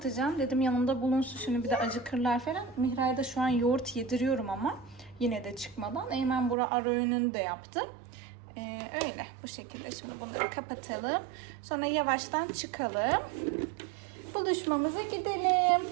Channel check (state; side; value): drops out; left; at 6.6 s